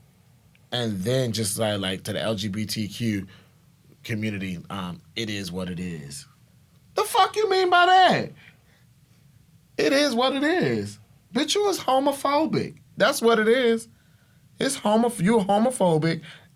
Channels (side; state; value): both; identical; correlation 1.00